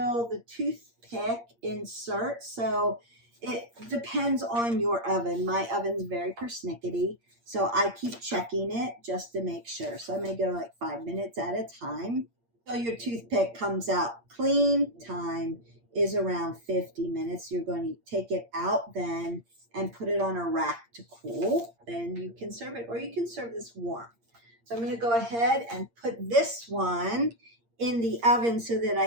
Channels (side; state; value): left; late; 8.6 ms